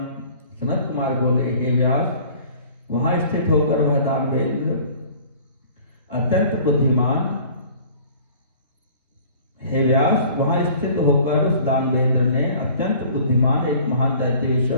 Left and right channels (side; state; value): both; inverted; correlation -0.49